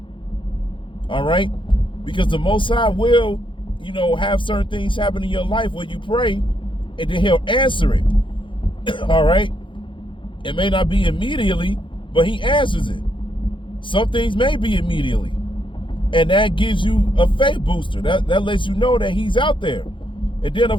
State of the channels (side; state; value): right; late; 0.24 ms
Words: All right? Because the Most High will, have certain things happen in your life where you pray, and then he'll answer it. All right? It may not be immediately, but he answers it. Some things may be immediately. And that gives you a faith booster. That lets you know that he's out there. And then,